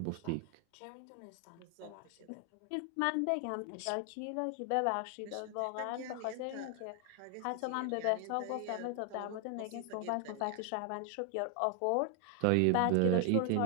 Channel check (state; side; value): different; both; correlation 0.00